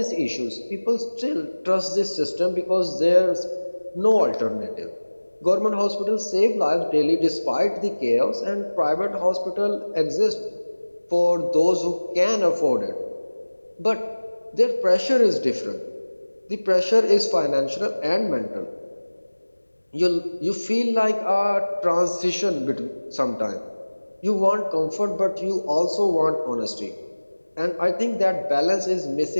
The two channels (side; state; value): both; inverted; correlation -1.00